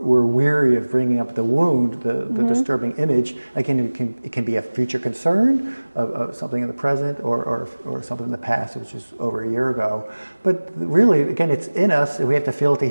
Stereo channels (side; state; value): both; inverted; correlation -1.00